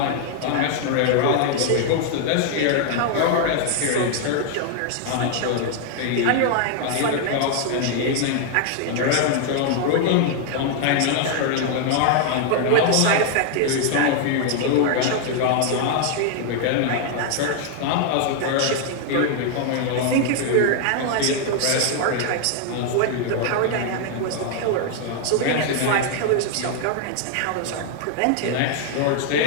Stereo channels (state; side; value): different; both; correlation 0.00